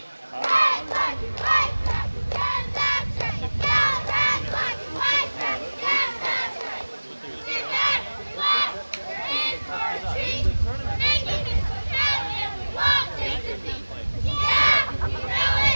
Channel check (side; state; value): both; inverted; correlation -1.00